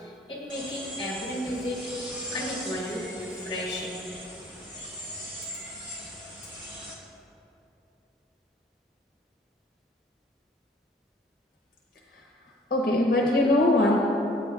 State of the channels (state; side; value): normal; both; correlation 0.55